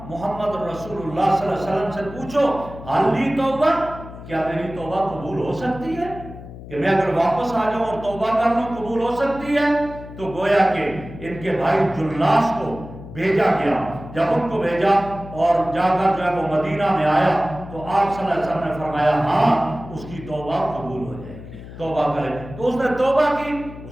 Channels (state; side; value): noise; left; hum, 14 dB below the sound